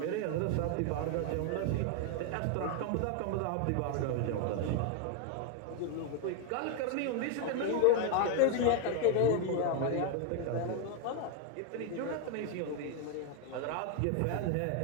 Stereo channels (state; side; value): different; both; correlation 0.01